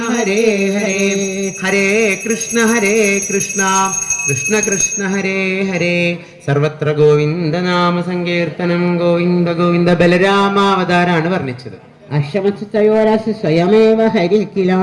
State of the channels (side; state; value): both; identical; correlation 1.00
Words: ഹരേ ഹരേ, ഹരേ കൃഷ്ണ കൃഷ്ണ കൃഷ്ണ ഹരേ ഹരേ. സർവത്ര ഗോവിന്ദ നാമ സങ്കീർത്തനം ഗോവിന്ദ ഗോവിന്ദ. ബലരാമാവതാരാണ് വർണ്ണിച്ചത്. അശ്വമസ്തയോരസ് സ്വയമേവ ഹരിക്കില